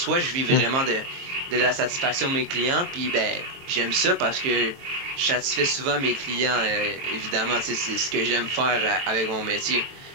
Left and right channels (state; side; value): late; left; 22 ms